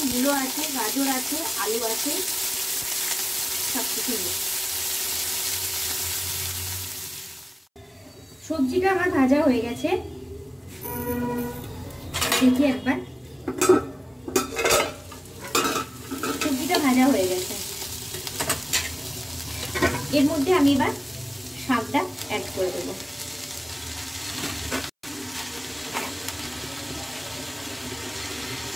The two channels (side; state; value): both; identical; correlation 1.00